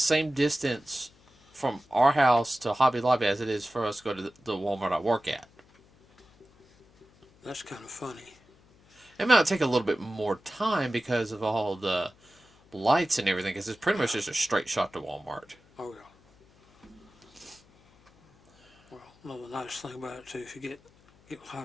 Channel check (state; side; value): noise; left; hum, 29 dB below the sound